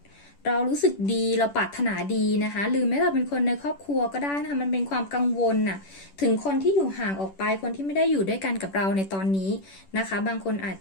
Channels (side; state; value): right; late; 10 ms